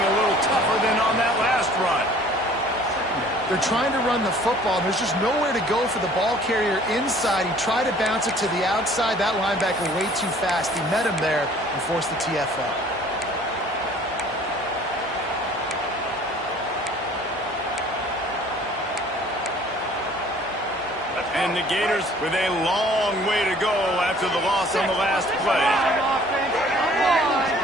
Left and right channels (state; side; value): normal; both; correlation 0.53